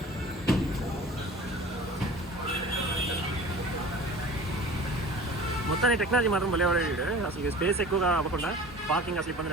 మొత్తాన్ని టెక్నాలజీ మాత్రం భలే వాడాడు. అసలు స్పేస్ ఎక్కువగా అవ్వకుండా పార్కింగ్ అసలు ఇబ్బంది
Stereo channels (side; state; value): both; normal; correlation 0.41